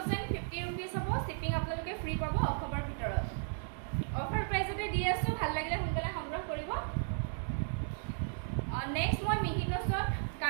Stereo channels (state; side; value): silent; left; digital silence